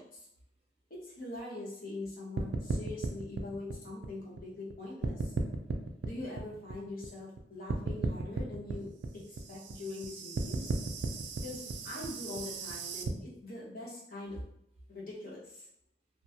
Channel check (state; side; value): normal; both; correlation 0.72